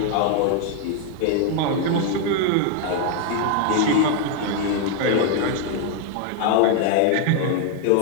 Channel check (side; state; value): both; different; correlation 0.00